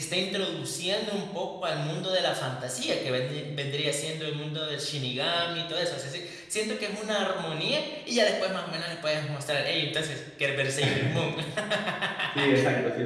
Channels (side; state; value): both; identical; correlation 1.00